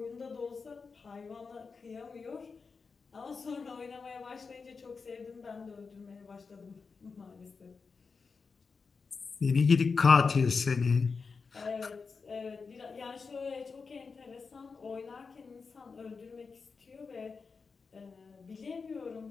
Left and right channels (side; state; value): right; quieter; 4.9 dB